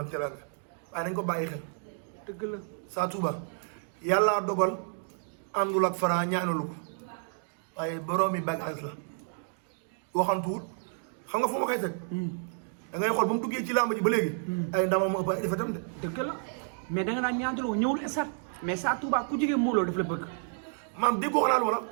teraanga waaye dañ ko bàyyi xel. dëgg la. Sa Touba yàlla dogal àndul ak Franc ñaanalu ko waaye boroomi bagage la waxantuwul xam nga fu ma koy teg. da ngay xool ba mu duggee ci làmb ji ba léegi. ay ndamam mu ëpp ay defetam de. dëgg la mais da nga naan ñaantaloo ñëwul esat mais Sa Touba ku jigee Modou Lo daf la bëgg. maam déggoo xanaa wala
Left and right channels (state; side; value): silent; left; 58 dB below the other